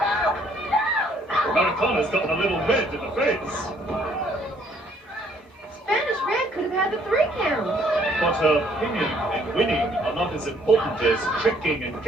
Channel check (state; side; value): normal; both; correlation 0.64